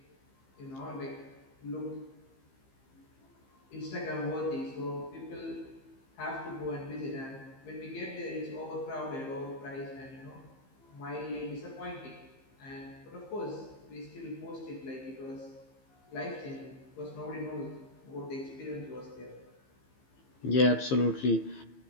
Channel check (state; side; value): late; right; 15 ms